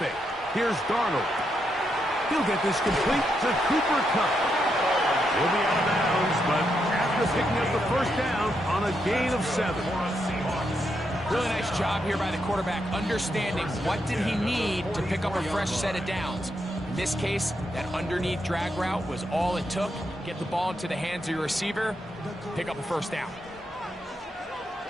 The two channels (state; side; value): normal; both; correlation 0.81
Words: Here's Darnold. He'll get this complete to Cooper Kupp. He'll be out of bounds, but after picking up the 1st down on a gain of 7. Really nice job here by the quarterback, understanding what did he need to pick up a fresh set of downs. In this case, that underneath drag route was all it took. Get the ball into the hands of your receiver, pick up a 1st down.